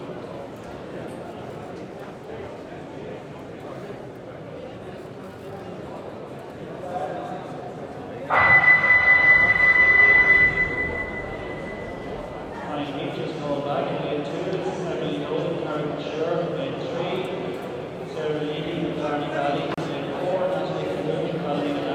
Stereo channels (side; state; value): both; identical; correlation 1.00